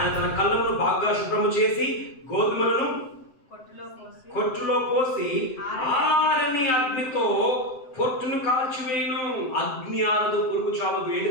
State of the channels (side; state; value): right; late; 7.8 ms